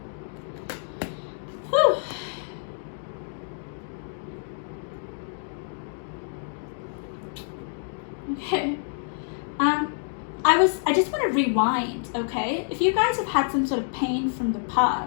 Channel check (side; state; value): right; silent; digital silence